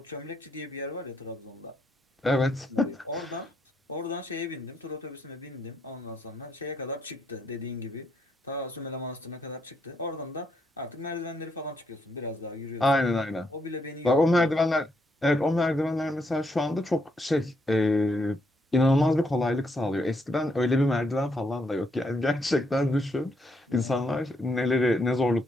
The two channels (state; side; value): normal; both; correlation 0.75